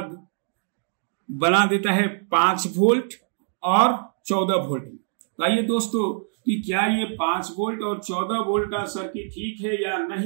बना देता है 5 वोल्ट और 14 वोल्ट। आइए दोस्तों कि क्या ये 5 वोल्ट और 14 वोल्ट का सर्किट ठीक है या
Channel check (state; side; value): silent; left; digital silence